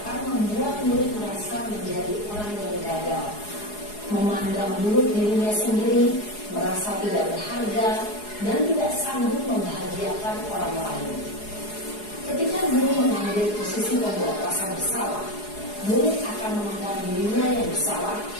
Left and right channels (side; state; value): right; late; 4.8 ms